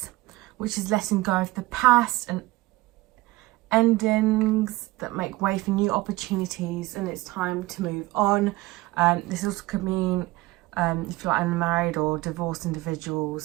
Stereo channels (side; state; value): left; quieter; 19.8 dB